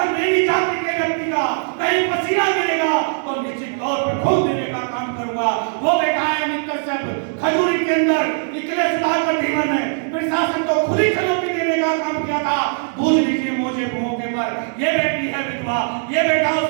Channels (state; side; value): silent; left; digital silence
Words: मेरी जाति के व्यक्ति का कहीं पसीना गिरेगा तो निश्चित तौर पर खून देने का काम करूंगा। वो बैठा है अमित कश्यप खजूरी के अंदर इसलिए सुधाकर धीमन ने प्रशासन को खुली चुनौती देने का काम किया था। भूल लीजिए मौके पर ये बेटी है विधवा, ये बेटा